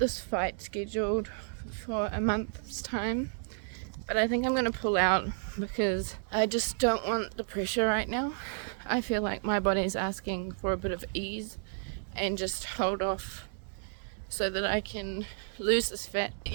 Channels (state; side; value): silent; left; digital silence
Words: fight scheduled for a month's time, but I think I'm going to pull out because I just don't want the pressure right now. I feel like my body's asking for a bit of ease and just hold off so that I can lose this fat.